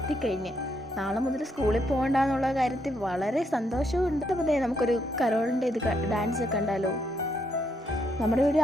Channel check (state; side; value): normal; both; correlation 0.76